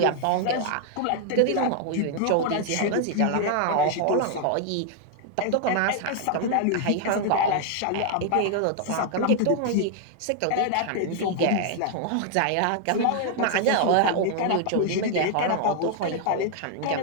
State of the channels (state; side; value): different; both; correlation 0.00